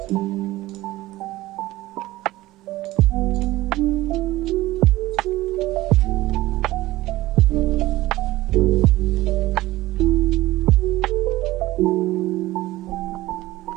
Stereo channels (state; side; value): quieter; left; 17.5 dB